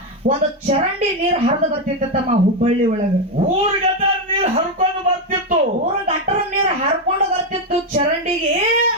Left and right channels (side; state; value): both; normal; correlation 0.06